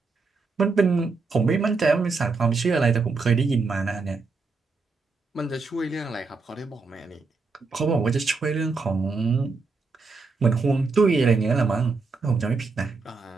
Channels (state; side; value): quieter; left; 4.2 dB